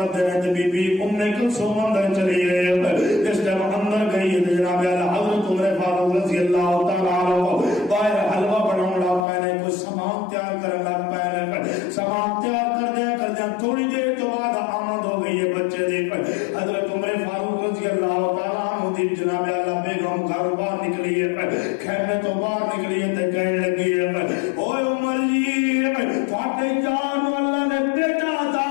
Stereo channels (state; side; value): drops out; right; at 9.2 s